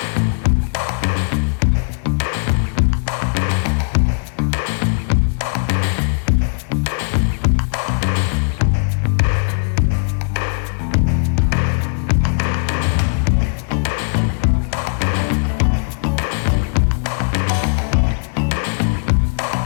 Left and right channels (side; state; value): right; silent; 67 dB below the other